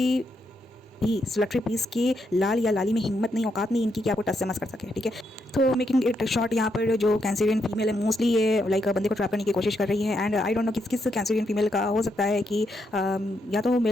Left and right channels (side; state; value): both; normal; correlation 0.80